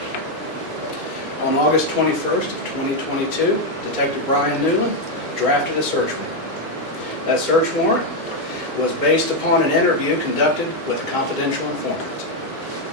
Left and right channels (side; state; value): right; late; 1.6 ms